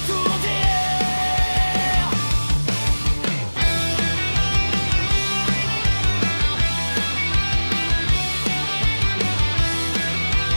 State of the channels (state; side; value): inverted; both; correlation -1.00